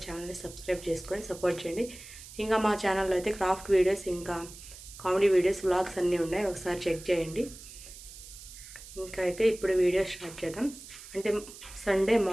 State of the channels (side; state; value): right; noise; hiss, 16 dB below the sound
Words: ఛానల్ని సబ్స్క్రైబ్ చేసుకొని సపోర్ట్ చేయండి. ఇంకా మా ఛానల్లో అయితే క్రాఫ్ట్ వీడియోస్, ఇంకా కామెడీ వీడియోస్, వ్లాగ్స్ అన్నీ ఉన్నాయి, ఒకసారి చెక్ చేయండి. ఇంకా అయితే ఇప్పుడు వీడియో స్టార్ట్ చేద్దాం. అంటే Sunday